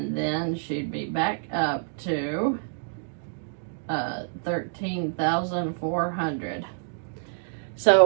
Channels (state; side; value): silent; left; digital silence